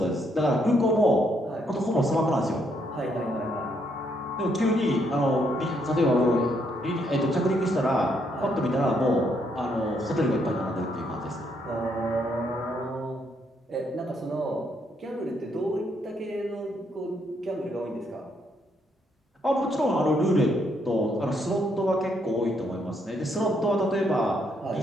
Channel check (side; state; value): both; normal; correlation 0.73